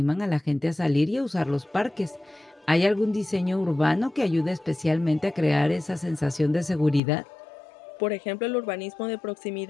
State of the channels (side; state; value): right; drops out; at 7.0 s